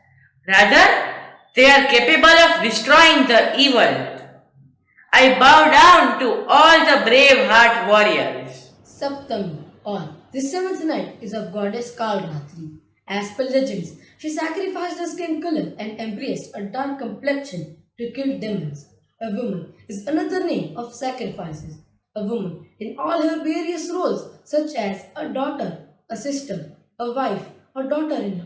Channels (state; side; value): identical; both; correlation 1.00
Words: Rather, they are capable of destroying the evil. I bow down to all the brave heart warriors. Saptami, or the seventh night, is of goddess Kalratri. As per legends, she sacrificed her skin color and embraced a dark complexion to kill demons. A woman is another name of sacrifices. A woman in all her various roles, such as a daughter, a sister, a wife, a daughter-in-law,